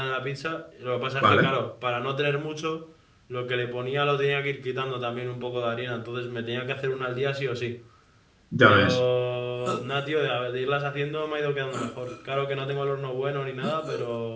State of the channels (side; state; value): both; identical; correlation 1.00